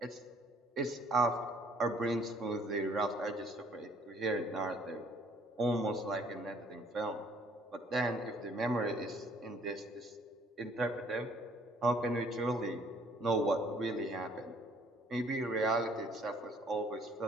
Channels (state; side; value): normal; both; correlation 0.61